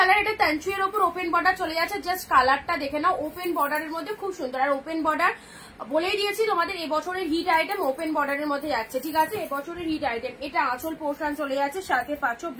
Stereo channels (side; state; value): both; identical; correlation 1.00